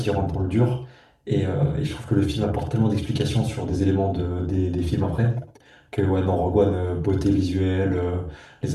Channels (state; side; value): identical; both; correlation 1.00